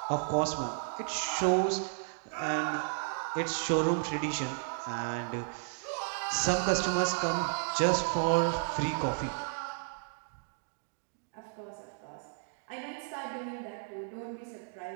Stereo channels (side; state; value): left; silent; digital silence